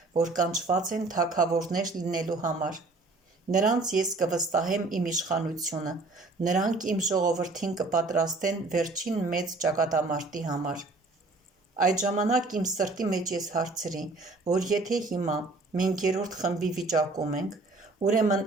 որ կանչված են թագավորներ լինելու համար։ Նրանց ես կվստահեմ իմ իշխանությունը, նրանք իմ ժողովրդին կպատրաստեն վերջին մեծ ճակատամարտի համար։ Այդ ժամանակ իմ սրտի մեջ ես հարցրի, որ եթե հիմա մենք երրորդ խմբի վիճակում ենք, ուրեմն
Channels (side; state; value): left; quieter; 3.3 dB